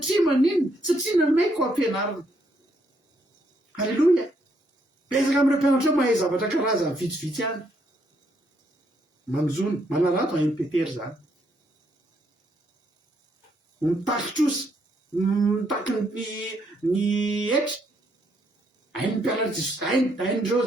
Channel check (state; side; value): normal; both; correlation 0.73